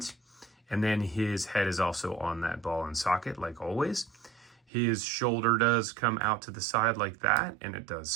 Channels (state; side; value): drops out; left; at 4.6 s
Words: And then his head is also on that ball and socket, like always. His shoulder does come out to the side like that, and it does